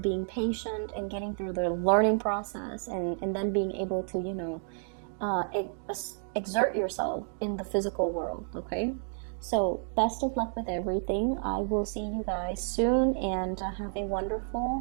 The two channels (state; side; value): silent; left; digital silence